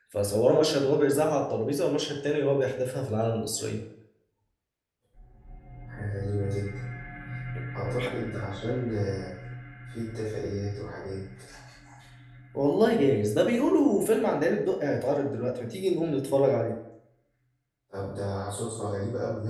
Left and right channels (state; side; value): identical; both; correlation 1.00